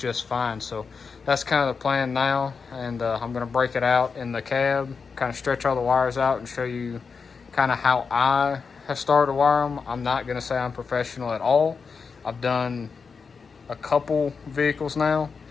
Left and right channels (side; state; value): right; quieter; 5.3 dB